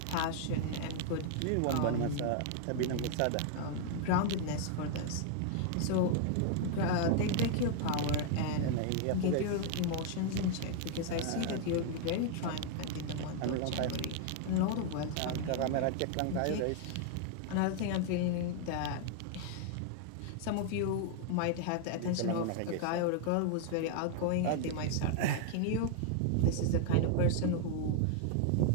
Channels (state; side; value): different; both; correlation 0.00